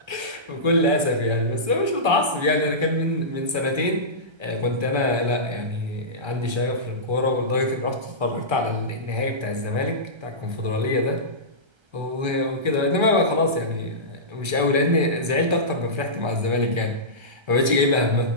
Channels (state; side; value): late; left; 1.3 ms